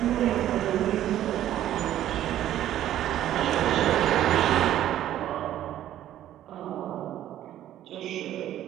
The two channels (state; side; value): quieter; left; 12.3 dB